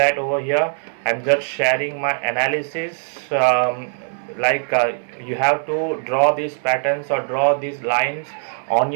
over here. I'm just sharing my analysis. You have to draw these patterns or draw these lines on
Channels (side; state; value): left; silent; 65 dB below the other